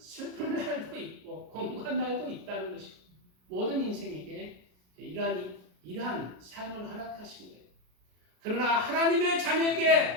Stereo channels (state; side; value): late; left; 33 ms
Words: 날도 있고 공고한 날도 있다는 것이고 모든 인생에게 이러한 삶을 허락하신 거예요. 그러나 하나님의